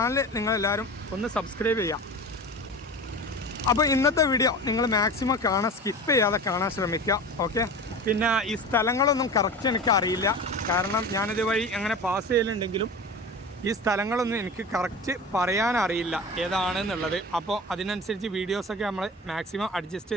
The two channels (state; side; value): normal; both; correlation 0.32